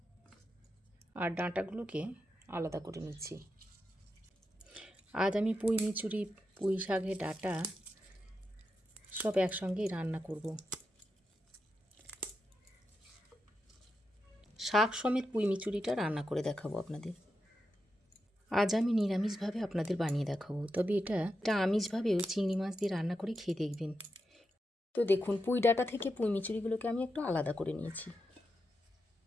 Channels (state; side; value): normal; both; correlation 0.87